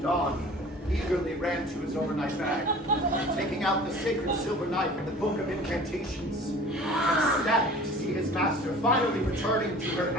Dawn eagerly ran to his overnight bag, taking out the sacred silver knife and the book of incantations, ecstatic to see his master finally returning to her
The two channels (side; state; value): both; normal; correlation 0.44